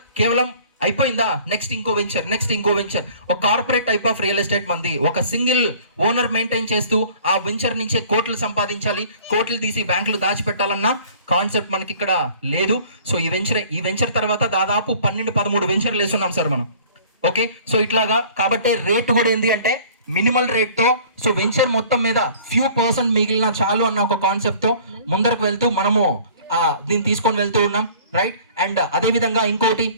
కేవలం అయిపోయిందా, నెక్స్ట్ ఇంకో వెంచర్. ఒక corporate type of real estate మంది. ఒక సింగిల్ ఓనర్ మెయింటైన్ చేస్తూ ఆ వెంచర్ నుంచే కోట్లు సంపాదించాలి, కోట్లు తీసి బ్యాంకులు దాచిపెట్టాలన్న కాన్సెప్ట్ మనకి ఇక్కడ లేదు. సో ఈ వెంచర్ తర్వాత దాదాపు 12-13 వెంచర్లు వేస్తున్నాం సార్ మనం. ఓకే, సో ఇట్లాగా కాబట్టి రేట్ కూడా ఏంటి అంటే మినిమల్ రేట్తో, సో వెంచర్ మొత్తం మీద ఫ్యూ పర్సెంట్ మిగిలిన చాలు అన్న ఒక కాన్సెప్ట్తో ముందరకు వెళ్తూ మనము దీన్ని తీసుకొని వెళ్తూ ఉన్నాం, రైట్. అండ్ అదేవిధంగా ఇంకోటి,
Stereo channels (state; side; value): inverted; both; correlation -0.50